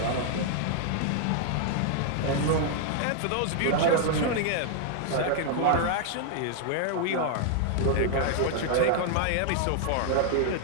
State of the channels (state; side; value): different; both; correlation -0.01